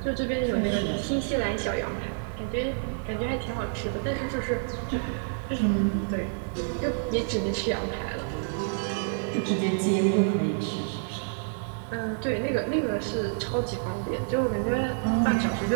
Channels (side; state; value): left; silent; digital silence